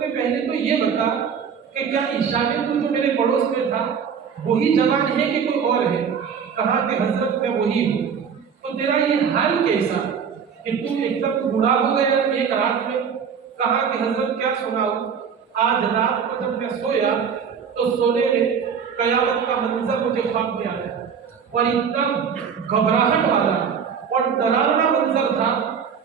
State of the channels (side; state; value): left; quieter; 6.9 dB